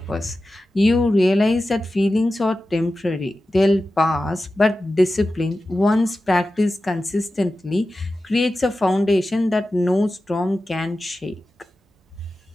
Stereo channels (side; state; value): both; normal; correlation 0.94